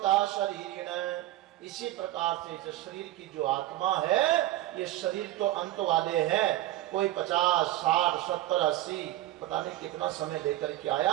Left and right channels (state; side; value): quieter; left; 15.3 dB